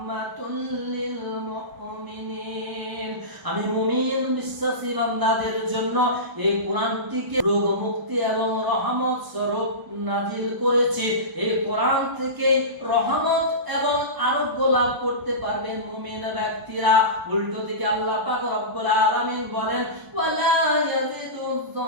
লিল মুমিনিন। আমি মুমিন বিশ্বাসী বান্দাদের জন্য এই কোরআনটিকে রোগ মুক্তি এবং রহমত স্বরূপ নাজিল করেছি। এই কোরআন থেকে রহমত এবং আরোগ্য লাভ করতে পারবেন মুমিন ব্যক্তিরা। উল্টো দিকে আল্লাহ পাক রব্বুল আলামিন বলেন, ওয়ালা ইয়াজিদুয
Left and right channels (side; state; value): left; late; 1.0 ms